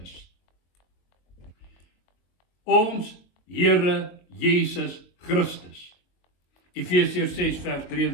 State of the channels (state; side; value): late; right; 22 ms